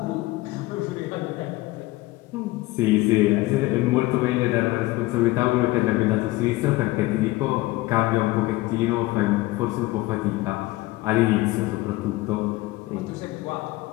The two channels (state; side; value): quieter; right; 19.4 dB